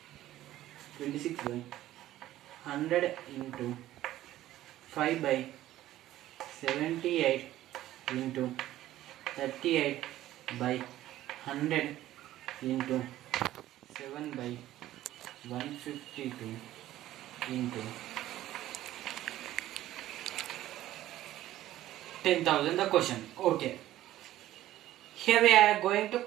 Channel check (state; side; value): quieter; left; 14.2 dB